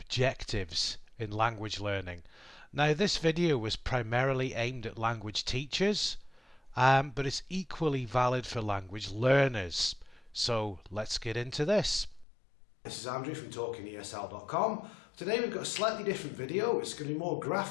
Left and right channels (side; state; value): right; drops out; at 12.2 s